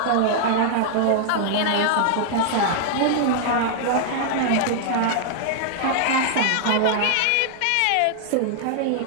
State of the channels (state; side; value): different; both; correlation -0.01